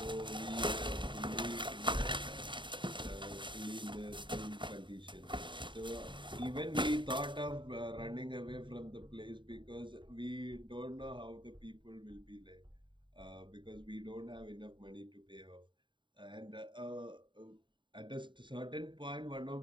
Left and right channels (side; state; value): left; late; 0.23 ms